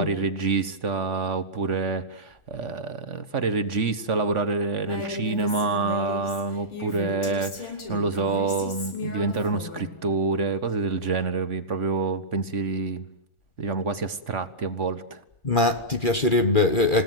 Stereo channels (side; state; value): right; late; 1.4 ms